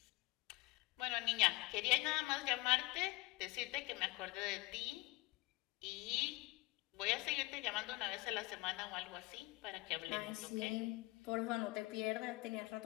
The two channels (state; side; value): quieter; right; 21.4 dB